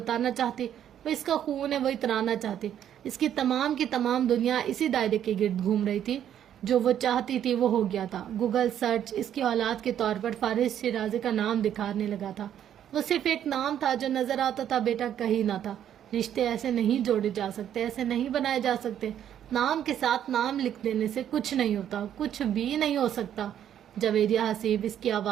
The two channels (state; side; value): quieter; left; 10.1 dB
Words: چاہتی، وہ اس کا خون ہے، وہ اترانا چاہتی۔ اس کی تمام دنیا اسی دائرے کے گرد گھوم رہی تھی، جو وہ چاہتی تھی وہ ہو گیا تھا۔ گوگل سرچ اس کی اولاد کے طور پر فارس شیرازی کا نام دکھانے لگا تھا۔ وہ صرف ایک نام تھا جو نظر آتا تھا، بیٹا کہیں نہ تھا۔ رشتے ایسے نہیں جوڑے جا سکتے، ایسے نہیں بنائے جا سکتے۔ نام کے ساتھ نام لکھ دینے سے کچھ نہیں ہوتا، کچھ بھی نہیں ہو سکتا۔ جویریہ حسیب اس کی